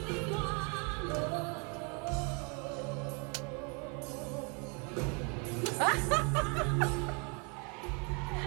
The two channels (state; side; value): quieter; left; 34.7 dB